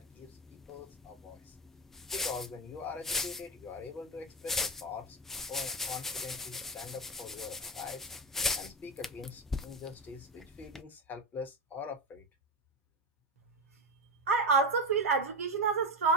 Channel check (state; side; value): normal; both; correlation 0.16